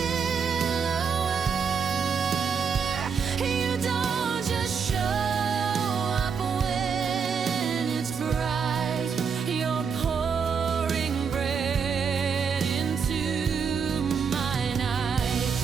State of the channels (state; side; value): quieter; left; 6.2 dB